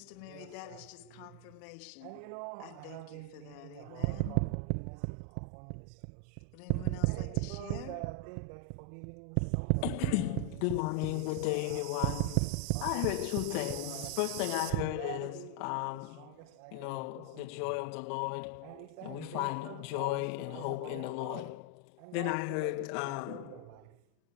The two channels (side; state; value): both; different; correlation 0.00